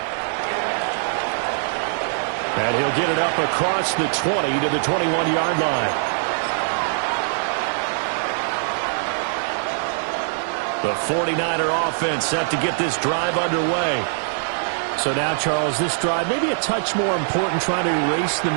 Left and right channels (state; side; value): silent; left; digital silence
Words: And he'll get it up across the 20 to the 21-yard line. The 49er offense set to get this drive underway. So now, Charles, this drive maybe a touch more important, trying to erase the